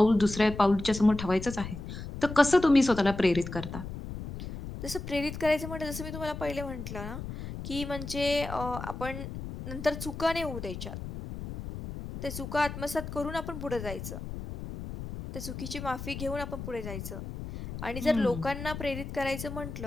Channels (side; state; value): left; noise; rumble, 8 dB below the sound